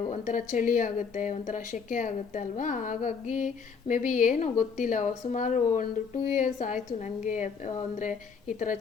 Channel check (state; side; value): quieter; right; 5.8 dB